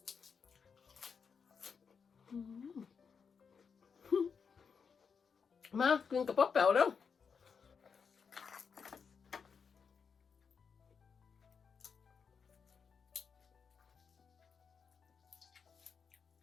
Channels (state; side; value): quieter; right; 6.0 dB